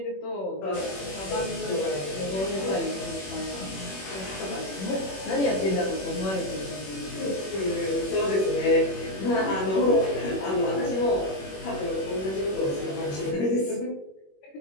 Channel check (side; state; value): right; late; 21 ms